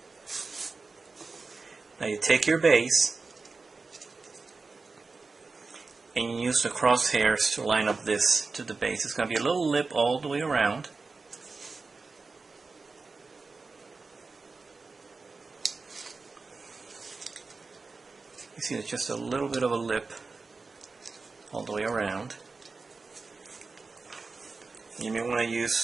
Now you take your base and you use the crosshairs to line up this to the base. It's going to be a little lip all the way around. You see there's just a little bit of a lip all the way around. You may want to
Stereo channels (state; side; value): quieter; left; 4.1 dB